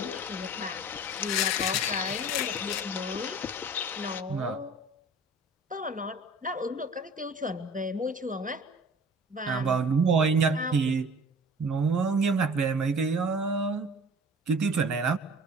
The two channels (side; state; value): both; normal; correlation 0.45